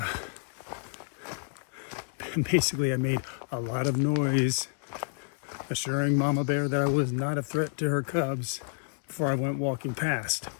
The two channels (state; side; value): silent; right; digital silence